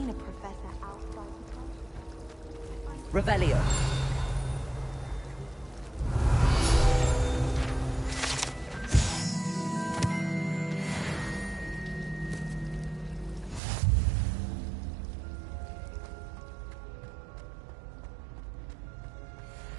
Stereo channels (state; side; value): drops out; left; at 13.6 s